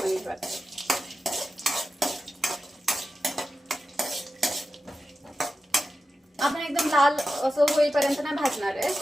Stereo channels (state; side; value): normal; both; correlation 0.92